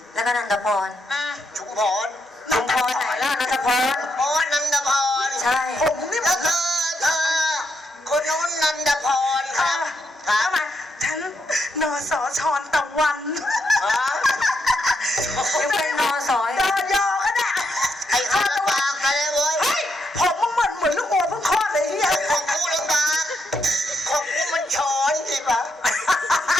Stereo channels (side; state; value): both; normal; correlation 0.79